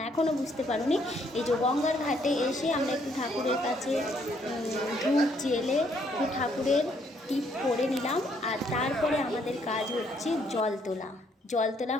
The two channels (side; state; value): both; normal; correlation 0.69